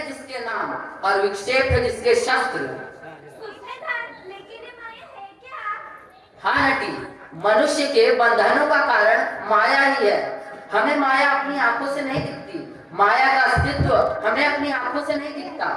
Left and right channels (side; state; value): both; identical; correlation 1.00